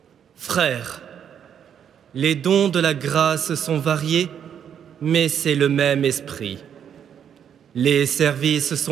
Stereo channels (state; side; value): quieter; left; 8.6 dB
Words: Frères, les dons de la grâce sont variés, mais c'est le même esprit. Les services